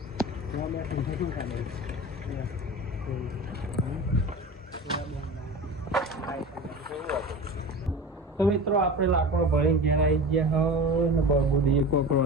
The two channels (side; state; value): both; normal; correlation 0.32